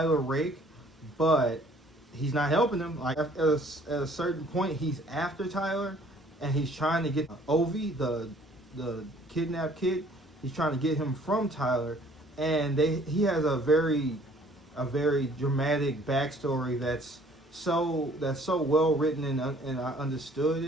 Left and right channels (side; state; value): both; normal; correlation 0.57